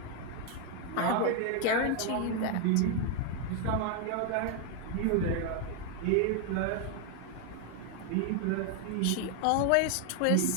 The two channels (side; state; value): both; different; correlation 0.01